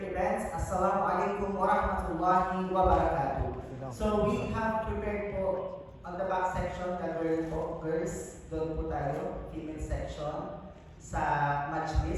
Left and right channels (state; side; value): identical; both; correlation 1.00